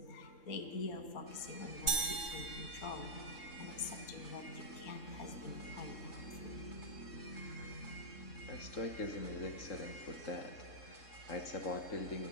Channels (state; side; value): late; right; 3.6 ms